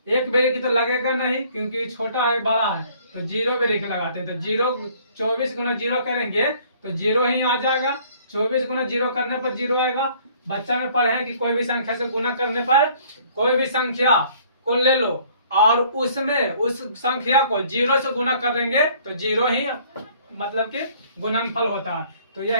1 बेरी की तो लगेगा नहीं, क्योंकि छोटा है बड़ा है, तो 0 बेरी के लगाते हैं। तो 24 गुना 0 करेंगे तो 0 ही आ जाएगा। 24 गुना 0 करने पर 0 आएगा। बच्चा में पढ़े कि कोई भी संख्या से गुना करने पर, कोई भी संख्या को ले लो और उसमें उस संख्या को 0 से गुना करेंगे तो 0 ही मतलब कि गुणनफल होता है। तो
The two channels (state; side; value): inverted; both; correlation -0.57